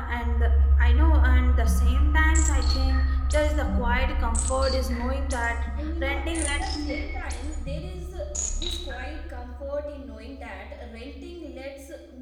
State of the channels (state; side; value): identical; both; correlation 1.00